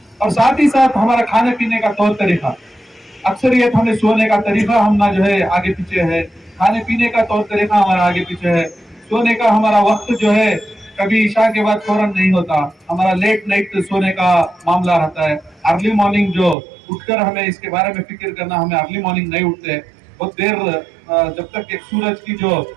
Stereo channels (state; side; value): drops out; left; at 16.6 s